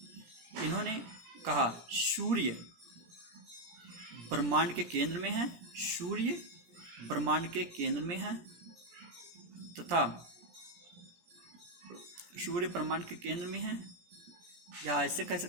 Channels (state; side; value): late; left; 17 ms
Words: इन्होंने कहा सूर्य ब्रह्मांड के केंद्र में है, सूर्य ब्रह्मांड के केंद्र में है, तथा सूर्य ब्रह्मांड के केंद्र में है, या ऐसे कह